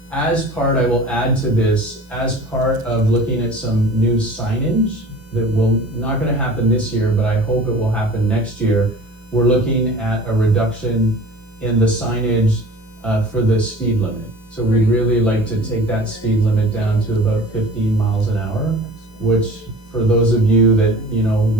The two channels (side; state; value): both; normal; correlation 0.42